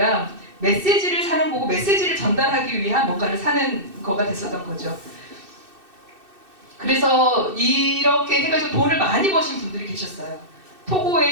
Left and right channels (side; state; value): left; late; 2.6 ms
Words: 메시지를 사는 거고 메시지를 전달하기 위한 뭔가를 사는 거가 됐었던 거죠. 그래서 이렇게 해가지고 돈을 많이 버신 분들이 계셨어요.